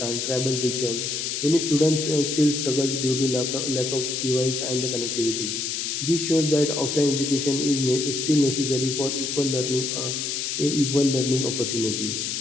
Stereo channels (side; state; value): left; noise; hiss, 2 dB below the sound